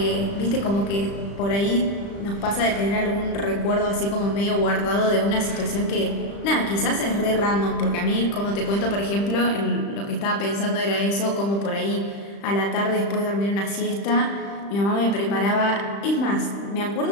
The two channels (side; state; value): right; late; 35 ms